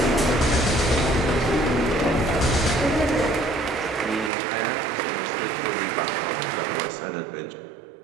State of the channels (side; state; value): left; drops out; at 4.3 s